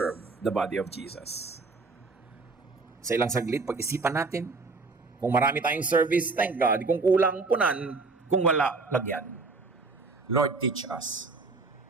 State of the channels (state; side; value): quieter; left; 3.9 dB